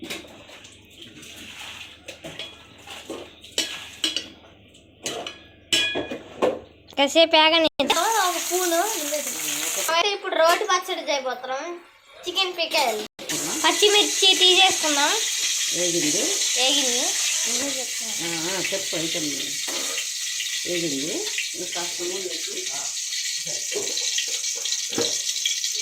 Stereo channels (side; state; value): both; identical; correlation 1.00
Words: కాసేపు ఆగని ఒక పూను. ఇప్పుడు రోటి పచ్చడి చేయబోతున్నాం. చికెన్ పిక్కలు పచ్చిమిర్చి తీసేసుకుందాం. వేగింది చెప్పు. అయితే వేగింది.